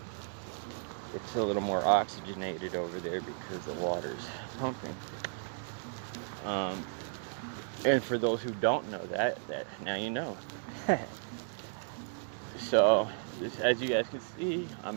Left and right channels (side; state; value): left; silent; digital silence